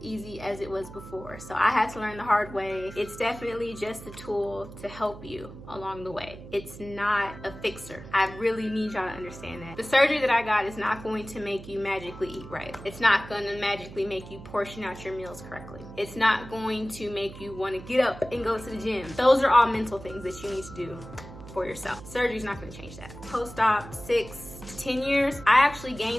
easy as it was before. So I had to learn the hard way. It's definitely just a tool to help you along the way. It's not a fixer. I really need y'all to understand that. The surgery that I got is not going to make you magically eat right. It's not going to magically make you portion out your meals correctly. It's not going to make you want to get up and go to the gym. Those are all mental things that you need to do for yourself. Surgery's not going to change that. Post-op, 6 to 10 years, I actually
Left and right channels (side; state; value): right; noise; hum, 15 dB below the sound